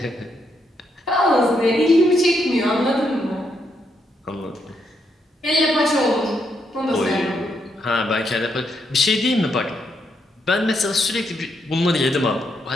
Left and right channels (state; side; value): normal; both; correlation 0.78